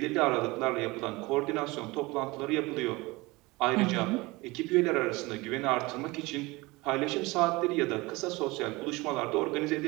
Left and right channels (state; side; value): quieter; left; 22.7 dB